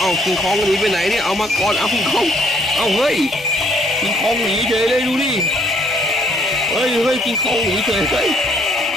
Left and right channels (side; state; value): both; normal; correlation 0.65